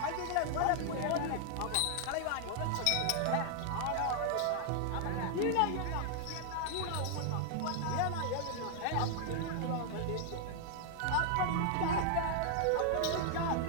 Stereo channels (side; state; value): both; different; correlation 0.00